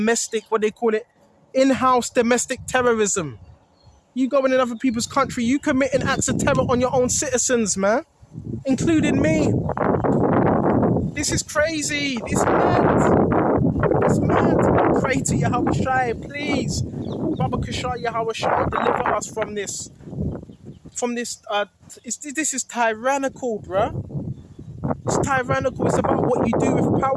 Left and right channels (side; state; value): both; identical; correlation 1.00